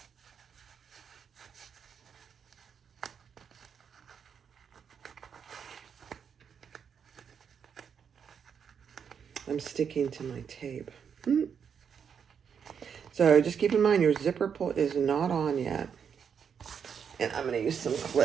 I'm sticking to my tape. So just keep in mind your zipper pull is not on yet. And I'm going to use some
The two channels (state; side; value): quieter; left; 7.2 dB